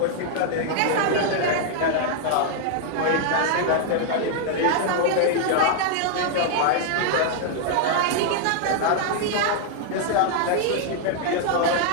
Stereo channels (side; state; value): both; different; correlation -0.01